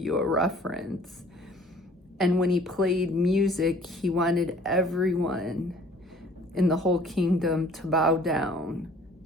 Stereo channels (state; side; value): normal; both; correlation 0.54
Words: a reference. And when he played music, he wanted everyone in the whole kingdom to bow down